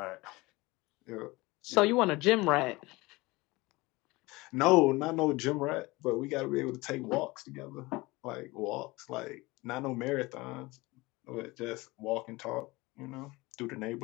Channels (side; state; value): right; quieter; 22.3 dB